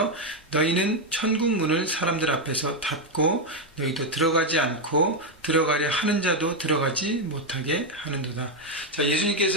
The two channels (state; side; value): normal; both; correlation 0.03